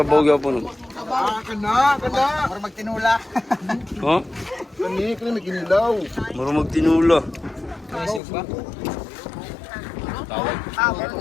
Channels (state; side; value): drops out; right; at 8.2 s